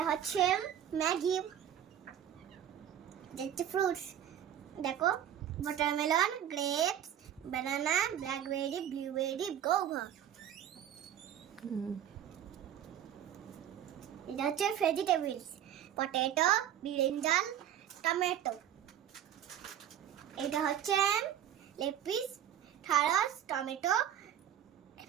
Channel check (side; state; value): left; quieter; 10.4 dB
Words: হচ্ছে ম্যাগি, এটা হচ্ছে ফ্রুটস। দেখো, ওয়াটারমেলন, গ্রেপস, বানানা, ব্ল্যাকবেরি, ব্লুবেরি, গোভা। এটা হচ্ছে ভেজিটেবলস, পটেটো, ব্রিঞ্জাল, টমেটো। এটা হচ্ছে লেপিস, ঢ্যাঁড়স, টমেটো,